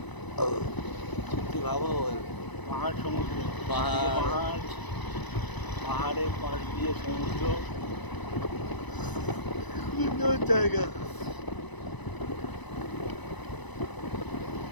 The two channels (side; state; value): right; late; 1.0 ms